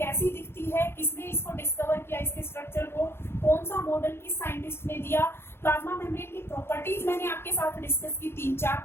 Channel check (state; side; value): late; right; 0.12 ms